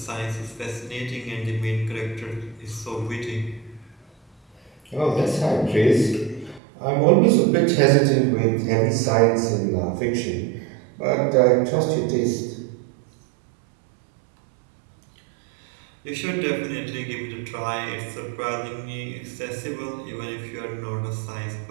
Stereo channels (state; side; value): drops out; left; at 6.6 s